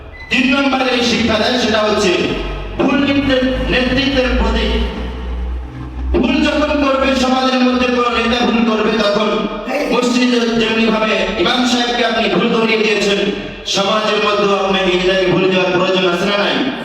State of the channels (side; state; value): both; identical; correlation 1.00